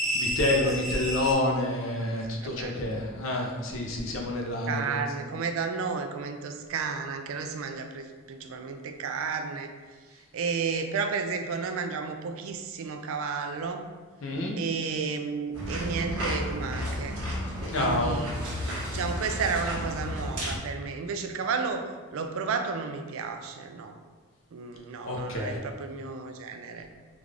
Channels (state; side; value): normal; both; correlation 0.14